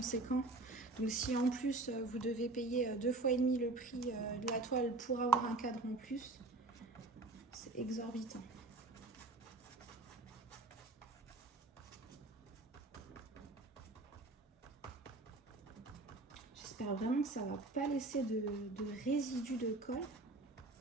Donc si en plus vous devez payer 2 fois et demi le prix de la toile pour avoir un cadre en plus, c'est exorbitant. J'espère vraiment que ça va pas laisser de résidus de colle.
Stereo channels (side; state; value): left; quieter; 3.1 dB